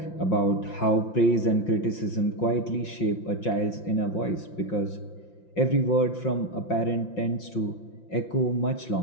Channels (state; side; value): late; right; 5.4 ms